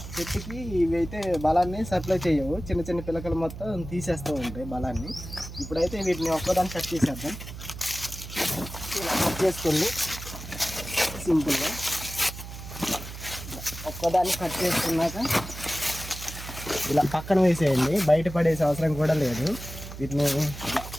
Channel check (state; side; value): noise; right; hum, 11 dB below the sound